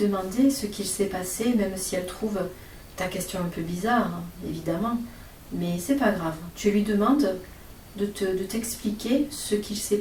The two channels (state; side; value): identical; both; correlation 1.00